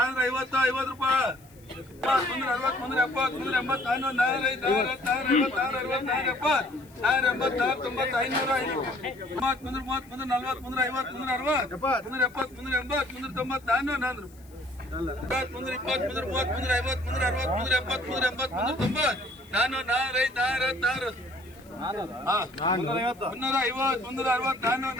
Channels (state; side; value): noise; left; hiss, 27 dB below the sound